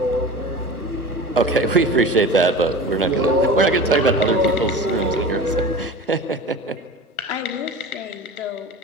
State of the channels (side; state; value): both; normal; correlation 0.34